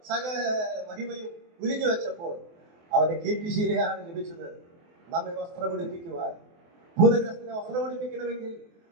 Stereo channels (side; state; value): left; late; 24 ms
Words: സകല മഹിമയും ഉരിഞ്ഞു വെച്ചപ്പോൾ അവന് കീർത്തിശീലയാണ് ലഭിച്ചത്. നമ്മെ വസ്ത്രമുടിപ്പിക്കുവാൻ, ഭൂതഗ്രസ്തനെ വസ്ത്രമുടിപ്പിക്കണമെങ്കിൽ